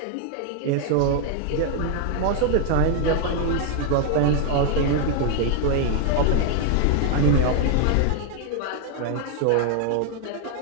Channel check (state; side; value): different; both; correlation 0.00